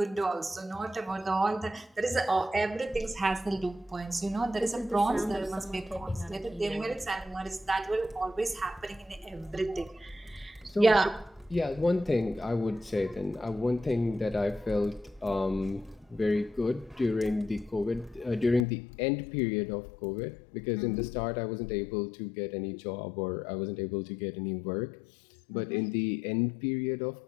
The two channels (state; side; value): drops out; right; at 18.7 s